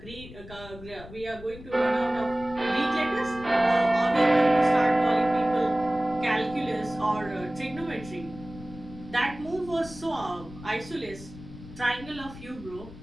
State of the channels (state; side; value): noise; left; rumble, 16 dB below the sound